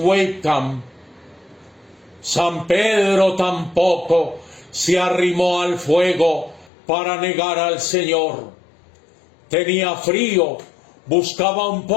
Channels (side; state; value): right; drops out; at 6.7 s